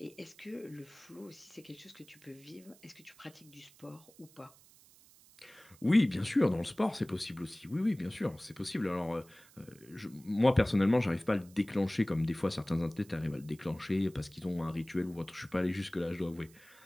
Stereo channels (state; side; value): noise; right; hiss, 25 dB below the sound